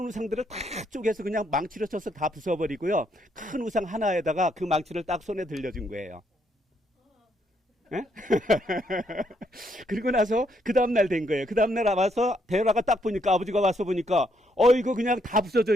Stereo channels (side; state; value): both; normal; correlation 0.74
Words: 우상들을 다 쪼개서 그냥 망치로 쳐서 다 부숴버리고요, 큰 우상 하나에다가 그 망치를 딱 손에 들려준 거예요. 그리고 나서 그 다음날 된 거예요. 그 다음날 와서 데라가 딱 보니까, 아버지가 와서 보니까 이거 그냥 다 부서져